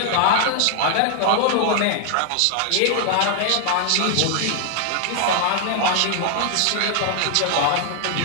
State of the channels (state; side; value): different; both; correlation 0.00